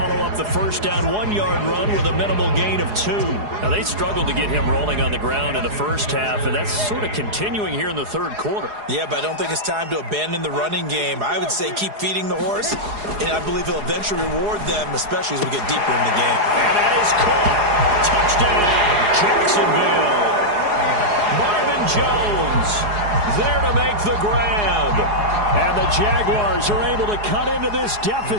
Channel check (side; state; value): left; late; 4.8 ms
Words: up the first down 1-yard run with a minimal gain of 2. Now, they struggled to get him rolling on the ground in the first half, and that's sort of continuing here in the third quarter. Yeah, but I don't think it's time to abandon the running game. I would say keep feeding the horse, and I believe he'll eventually reward them, especially as we get deeper in the game. And that is caught. Touchdown, Jacksonville. Marvin Jones there to make the grab. And the Jaguars are able to cut into this